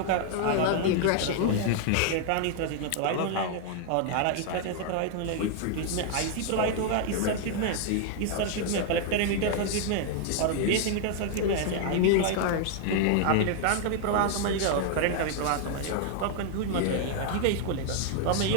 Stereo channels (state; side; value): different; both; correlation 0.00